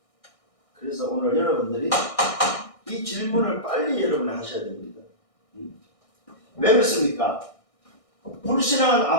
그래서 오늘 여러분들이 이 질문을 빨리 여러분이 하셔야 됩니다. 왜 그렇습니까? 불신앙은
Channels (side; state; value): right; late; 1.6 ms